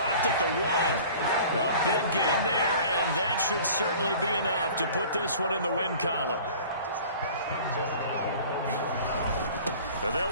at the 1. A big gain there, and that should certainly be enough to put this one in the win column. They'll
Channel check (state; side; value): inverted; both; correlation -0.45